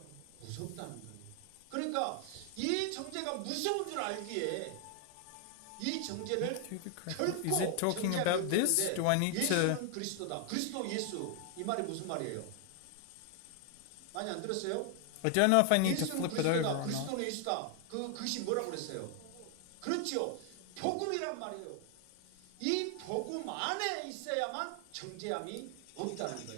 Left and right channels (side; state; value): both; different; correlation 0.00